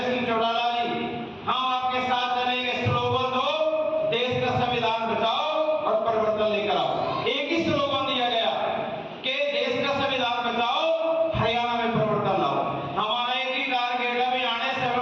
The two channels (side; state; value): both; identical; correlation 1.00